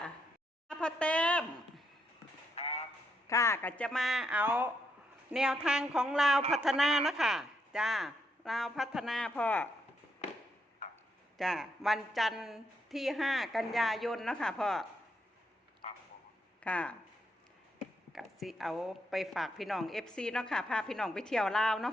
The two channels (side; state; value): both; normal; correlation 0.79